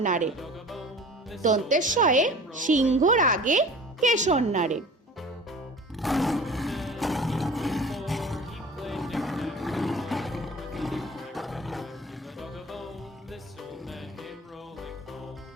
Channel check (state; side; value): normal; both; correlation 0.41